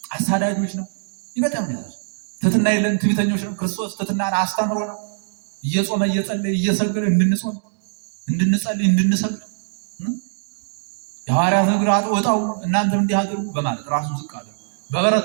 አሳዳጆች ነው። ይበጣም ነው። ትሕትና የለን፣ ትዕቢተኞች ነው። ክርስቶስ ትሕትናን አስተምሮ ነው። እየጾመ እየጸለየ እየሰገደ እንድንጾም፣ እንድንጸልይ፣ እንድንሰግድ የሐዋርያት እግር አጥበው እናንተም እንዲህ አድርጉ በማለት ራሱን ዝቅ አለ። በበረት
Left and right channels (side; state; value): left; silent; digital silence